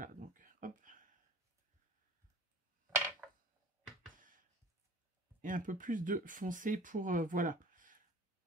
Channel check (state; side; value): normal; both; correlation 0.40